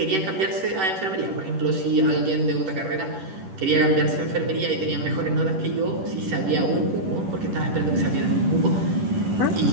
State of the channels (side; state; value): left; late; 10 ms